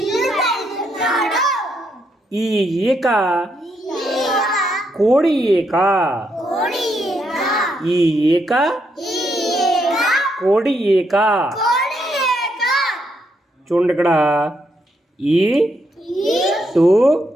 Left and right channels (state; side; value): normal; both; correlation 0.77